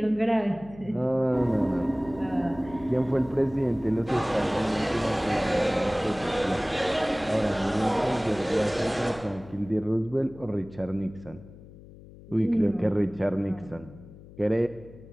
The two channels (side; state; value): left; noise; hum, 19 dB below the sound